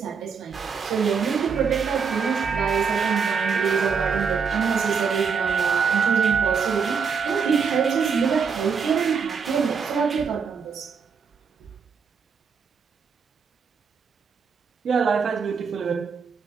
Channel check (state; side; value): quieter; left; 5.9 dB